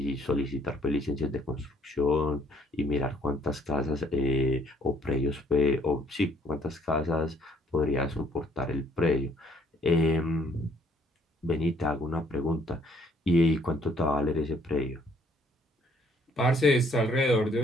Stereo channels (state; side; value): normal; both; correlation 0.64